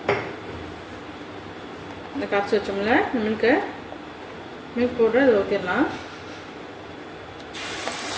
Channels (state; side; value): identical; both; correlation 1.00